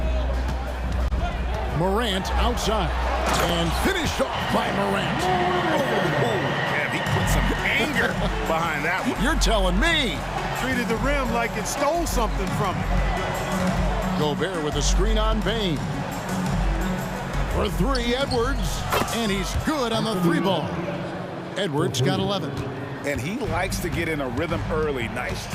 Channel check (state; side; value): identical; both; correlation 1.00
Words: Morant outside. And finished off by Morant. Yeah, he put some anger behind that one. You're telling me. Treated the rim like it stole something from him. Gobert with a screen on Bane. For 3, Edwards. And he's good on the 3 ball. Edwards got 11. And he likes to get in a rhythm early. Nice